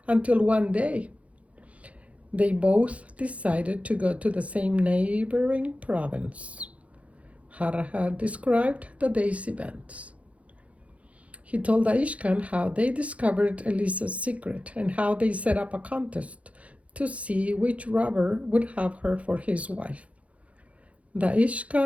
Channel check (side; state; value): left; late; 0.065 ms